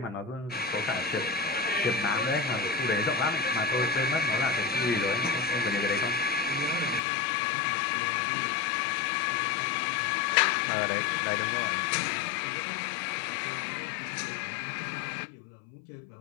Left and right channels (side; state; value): right; drops out; at 7.0 s